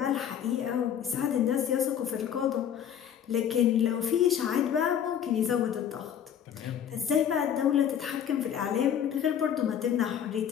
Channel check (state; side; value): quieter; right; 9.1 dB